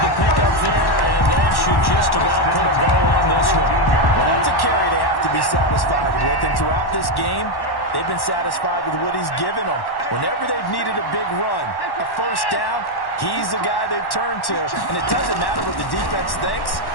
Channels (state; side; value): late; right; 1.1 ms